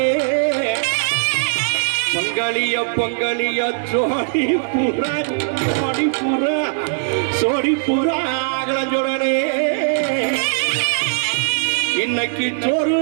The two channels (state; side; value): silent; left; digital silence